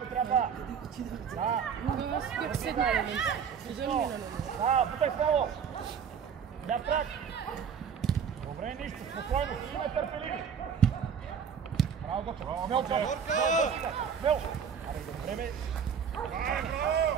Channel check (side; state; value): left; quieter; 7.2 dB